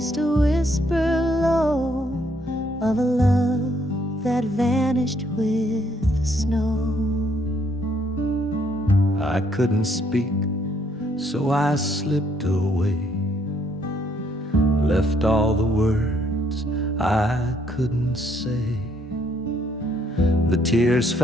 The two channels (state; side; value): normal; both; correlation 0.69